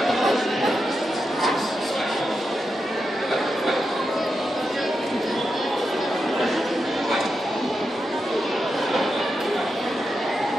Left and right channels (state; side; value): normal; both; correlation 0.87